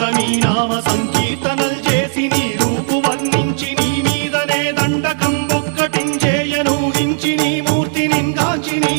నామ సంకీర్తనల్ చేసి నీ రూపు వర్ణించి నీ మీదనే దండకం ఒక్కటించేయనూహించి నీ మూర్తిని గాంచి నీ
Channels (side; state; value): left; silent; 69 dB below the other